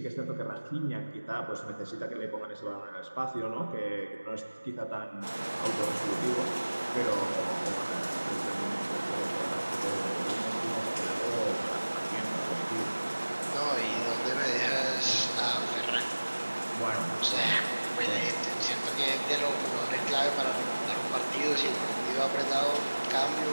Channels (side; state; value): both; inverted; correlation -1.00